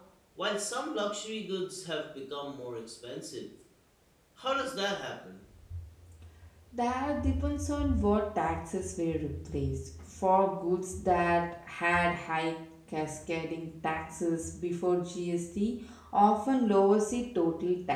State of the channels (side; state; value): both; identical; correlation 1.00